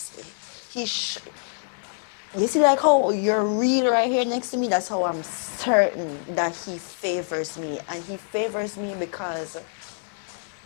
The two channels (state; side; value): silent; right; digital silence